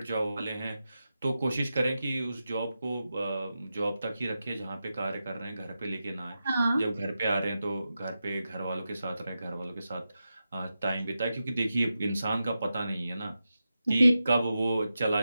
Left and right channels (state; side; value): inverted; both; correlation -0.91